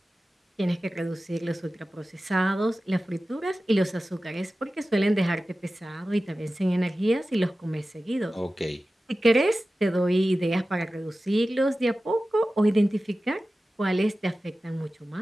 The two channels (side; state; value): both; normal; correlation 0.95